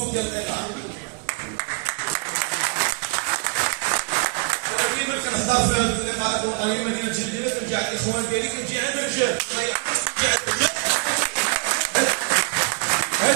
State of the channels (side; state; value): left; quieter; 35.2 dB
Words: ديال القطاع. ديما كنهضر في هذه اللقاءات الوطنيه مدينه جديده كنجي عند الاخوان ديالي كنجي عند الرجال